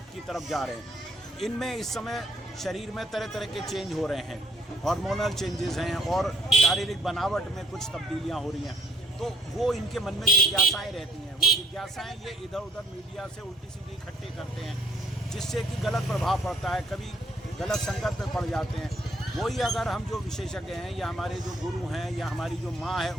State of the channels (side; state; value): both; normal; correlation 0.64